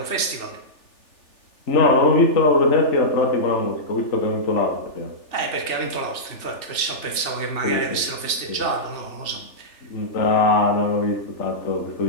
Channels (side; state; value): right; late; 3.4 ms